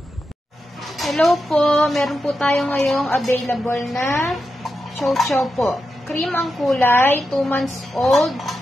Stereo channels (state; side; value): normal; both; correlation 0.88